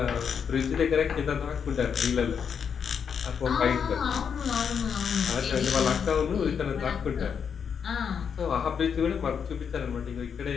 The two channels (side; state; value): right; quieter; 7.0 dB